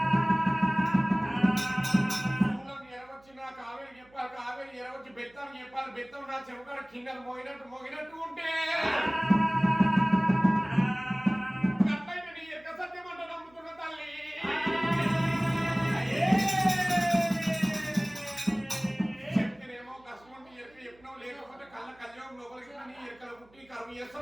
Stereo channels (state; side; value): noise; right; hum, 29 dB below the sound